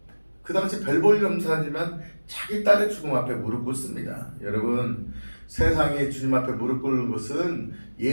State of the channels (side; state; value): both; inverted; correlation -1.00